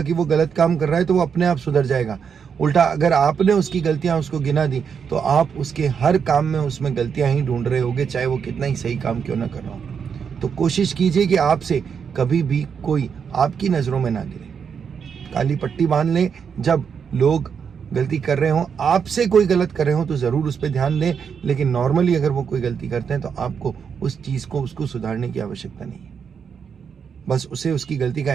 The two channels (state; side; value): quieter; left; 6.8 dB